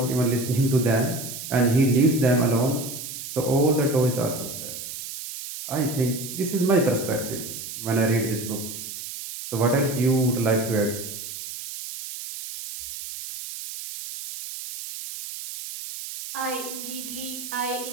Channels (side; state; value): right; noise; hiss, 9 dB below the sound